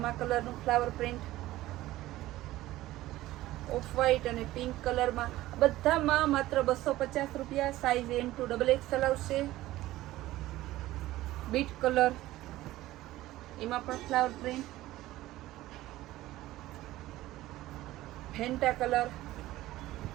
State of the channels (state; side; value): quieter; left; 16.2 dB